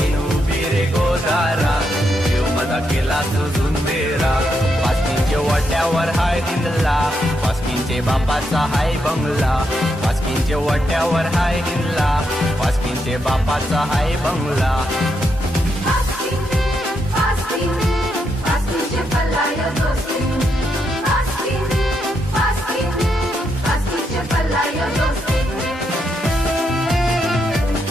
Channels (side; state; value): both; normal; correlation 0.81